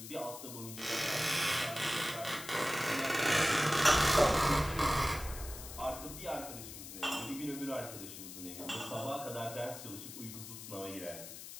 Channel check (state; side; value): noise; left; hiss, 11 dB below the sound